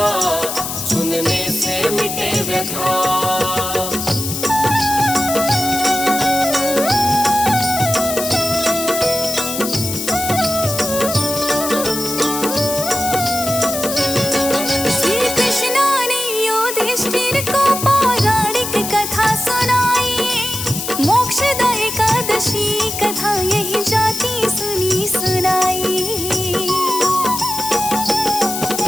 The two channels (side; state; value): left; noise; hiss, 5 dB below the sound